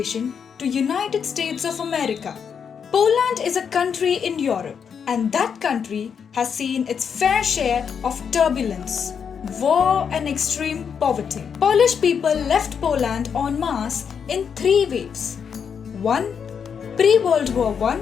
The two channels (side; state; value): right; quieter; 7.0 dB